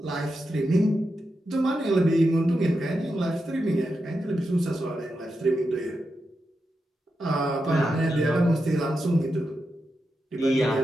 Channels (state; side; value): normal; both; correlation 0.87